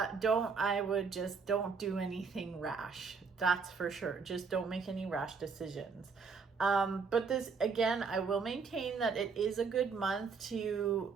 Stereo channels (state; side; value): quieter; left; 5.2 dB